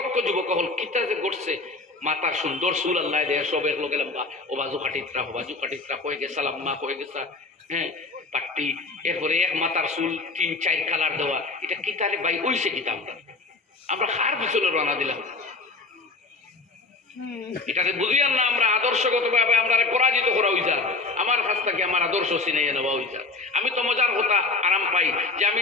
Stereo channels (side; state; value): right; quieter; 3.5 dB